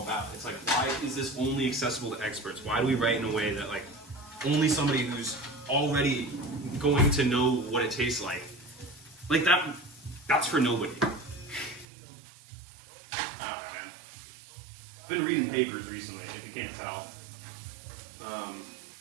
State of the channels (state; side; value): drops out; left; at 11.9 s